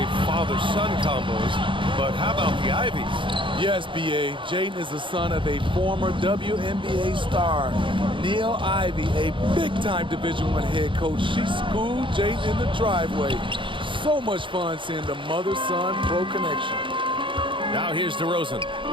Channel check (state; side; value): late; left; 0.24 ms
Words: father-son combos, but how about the Ivies? Yes, B.A. Jaden is the son of a former WNBA star, Neil Ivy, a big-time Division I head coach. She schooled Jaden in the driveway. So much fun seeing the mother-son pro connection. Now here's DeRozan.